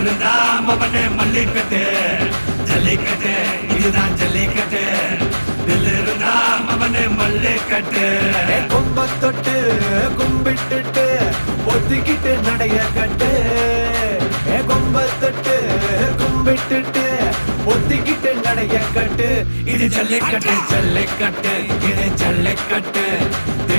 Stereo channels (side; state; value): both; inverted; correlation -1.00